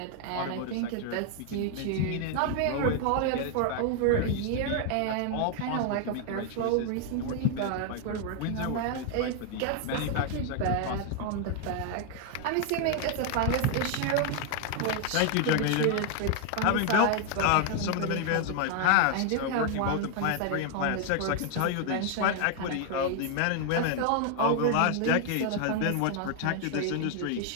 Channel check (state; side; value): different; both; correlation 0.00